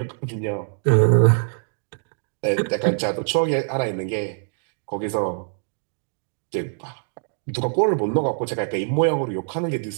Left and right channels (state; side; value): silent; left; digital silence